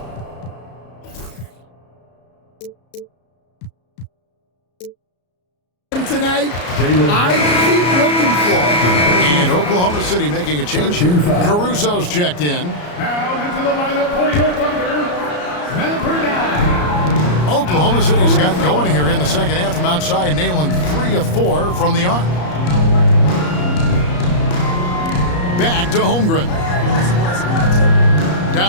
Tonight, I keep looking for him. And Oklahoma City making a change here. Caruso's checked in. Now into the lineup for your Thunder, number 9. Oklahoma City's got going here in the second half from outside, nailing 3 of 4 from the arc. Back to Holmgren.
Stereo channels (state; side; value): late; right; 34 ms